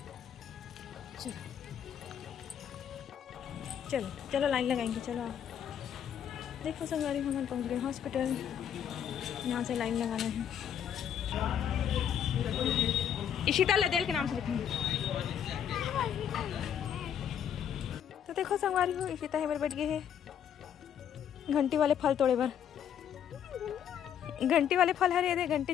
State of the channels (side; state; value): right; quieter; 9.1 dB